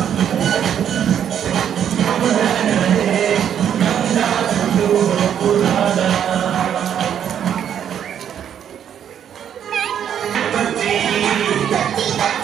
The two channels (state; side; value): quieter; left; 9.2 dB